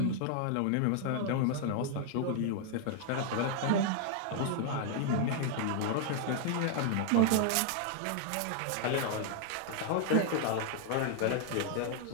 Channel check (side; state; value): both; different; correlation -0.01